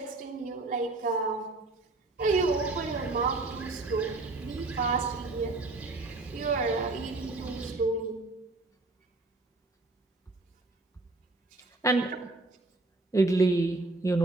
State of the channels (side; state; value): left; quieter; 3.2 dB